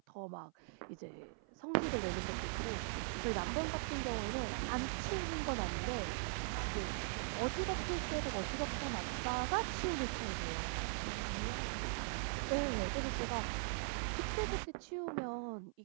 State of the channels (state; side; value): silent; left; 51 dB below the other